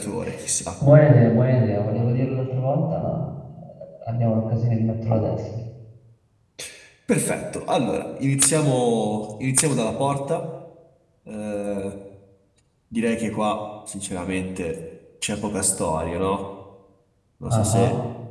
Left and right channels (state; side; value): identical; both; correlation 1.00